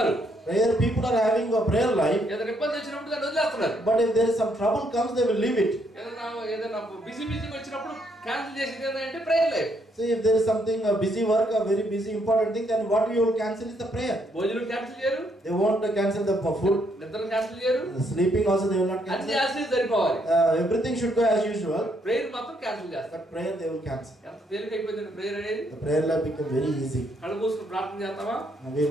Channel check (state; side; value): normal; both; correlation 0.72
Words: Prayer people are having a prayer life, ఏదైనా ఇబ్బంది వచ్చినప్పుడు దాన్ని వదిలేస్తున్నారు. but if there is some trouble comes, they will leave it. ఏదైనా బిజీ వచ్చినప్పుడు క్యాన్సిల్ చేసేది ఏంటంటే prayer life. So if there is something, a busy work, a very busy important thing, then what you will cancel is the prayer. భోజనం cancel చేయరు, They won't cancel the food. నిద్ర cancel చేయరు, Sleeping also they will not అన్ని cancel. చేస్తే సరిపోవాలి. Everything should go as usual, prayer మాత్రం cancel చేస్తారు. but prayer they will cancel. ఎంత తేలిక అయిపోయింది ప్రేయర్ అనేది. The prayer life become very easy. కళ్ళు మూసుకుని ప్రార్థన చేస్తామా, And we